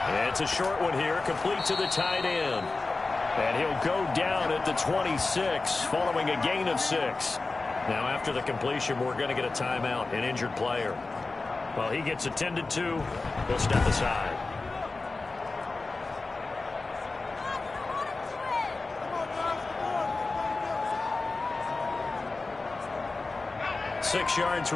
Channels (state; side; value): quieter; right; 3.6 dB